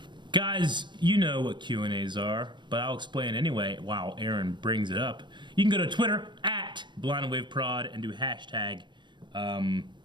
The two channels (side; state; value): left; late; 0.22 ms